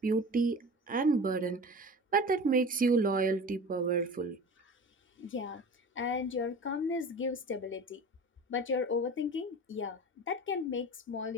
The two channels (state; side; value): normal; both; correlation 0.36